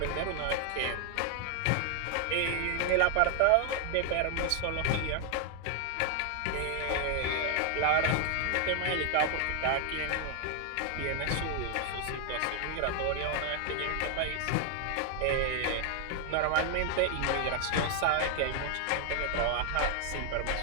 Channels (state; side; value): different; both; correlation 0.00